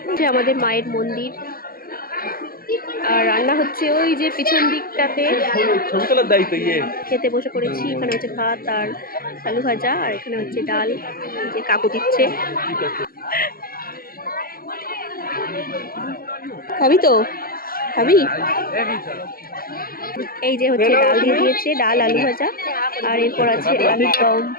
আমাদের মায়ের মন্দির, আর রান্না হচ্ছে ওই যে পিছন দিকটাতে। খেতে বসে পড়েছি। এখানে হচ্ছে ভাত আর আলু ভাজা, আর এখানে হচ্ছে ডাল, যে কাকু দিচ্ছে। খাবি তো? খাবি? এই যে হচ্ছে ডাল দিয়ে দিয়েছে, ডাল আলু ভাজা, আর এরপর আছে আলুর দম।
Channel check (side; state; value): right; late; 0.43 ms